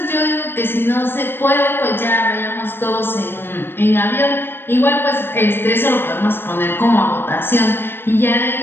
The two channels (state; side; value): late; right; 0.10 ms